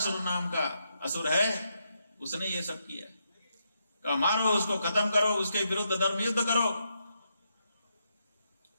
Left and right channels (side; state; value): both; inverted; correlation -0.81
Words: नाम का असुर है, उसने ये सब किया। कहा मारो उसको, खत्म करो, उसके विरुद्ध धर्म युद्ध करो।